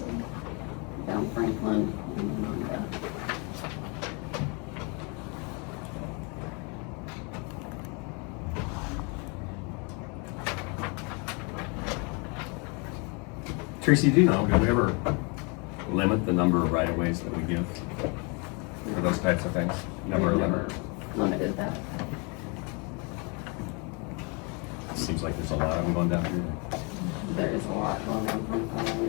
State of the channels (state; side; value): quieter; right; 32.5 dB